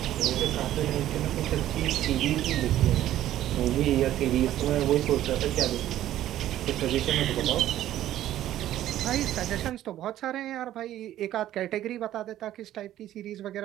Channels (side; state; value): left; quieter; 12.9 dB